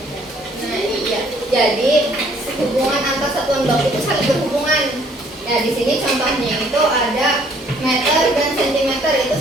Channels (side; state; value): both; normal; correlation 0.61